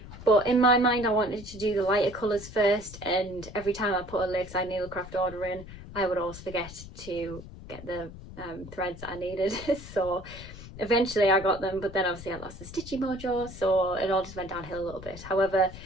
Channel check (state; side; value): noise; left; rumble, 14 dB below the sound